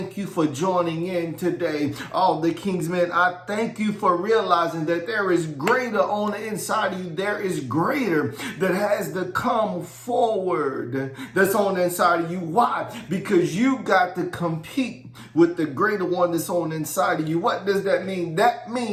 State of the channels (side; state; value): both; identical; correlation 1.00